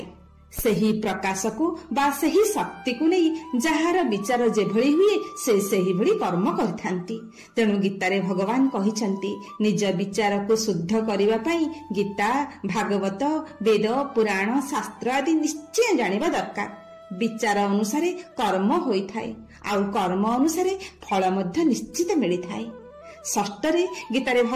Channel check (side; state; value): both; identical; correlation 1.00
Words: सेही प्रकाश को बा सेही शक्ति को नहीं जहार विचार जेभଳି हुए से सेही भଳି कर्म करथांती। तेणु गीतारे भगवान कहिसंती निज विचार को शुद्ध करिवा पई गीता, भागवत, वेद, पुराण, शास्त्र आदि निश्चय जानिबा दरकार। विचार अनुसारे कर्म होइथाए आउ कर्म अनुसारे फल मध्य निश्चित मिलिथाए। षष्ठरे गीतारे